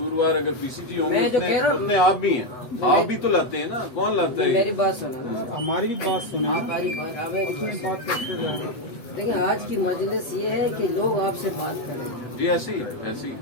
अगर पीसीजी होंगे मैं जो कह रहा हूँ- उतने आप भी हैं। आप भी तो लाते हैं ना, कौन लाता है? मेरी बात सुनो। हमारी भी बात सुने। हमारी बात हमें बात करते जा रहे हैं। देखिए, आज की मजलिस ये है कि लोग आपसे बात करें। जी ऐसे ही है, ऐसे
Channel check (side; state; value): right; late; 8.0 ms